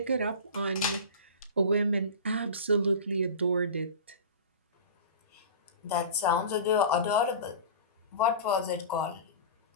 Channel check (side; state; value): both; inverted; correlation -0.33